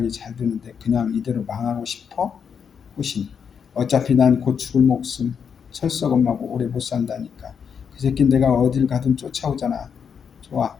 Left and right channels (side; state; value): right; quieter; 7.0 dB